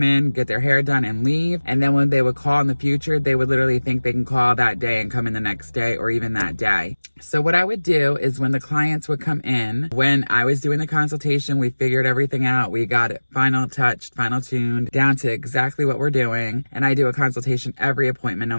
in, get their hair done, and leave. And then when they would call in the future, they would literally think they can call that day and come in the next day or even that day. So what I would do is when the clients would come in, when I was doing the consultation, we figured everything out. We got it final touched, final tuned, down to exactly what we're doing. And I do a consultation every appointment, no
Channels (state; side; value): inverted; both; correlation -1.00